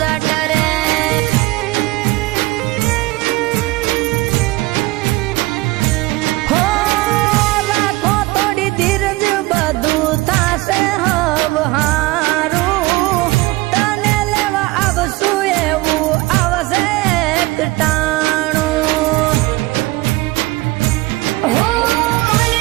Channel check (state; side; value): quieter; left; 20.8 dB